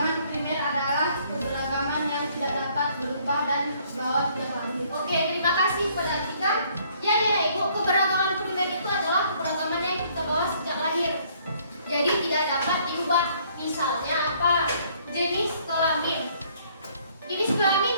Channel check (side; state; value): both; inverted; correlation -0.63